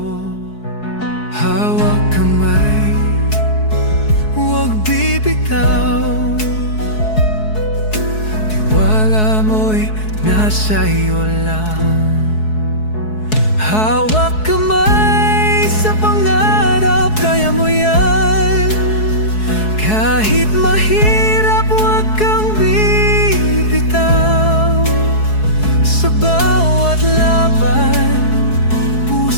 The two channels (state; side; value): late; right; 4.7 ms